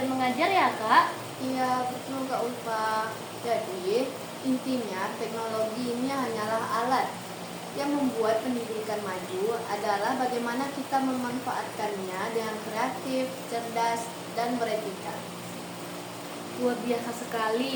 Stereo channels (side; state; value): both; identical; correlation 1.00